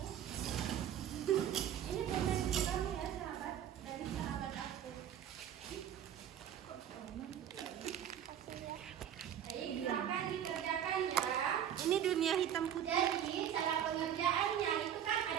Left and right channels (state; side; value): quieter; left; 9.9 dB